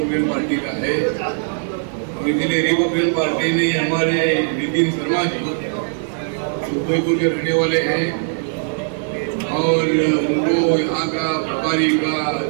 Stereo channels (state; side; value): silent; left; digital silence